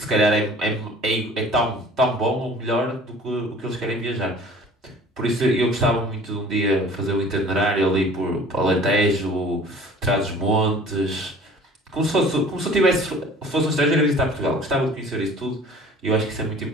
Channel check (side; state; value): both; normal; correlation 0.48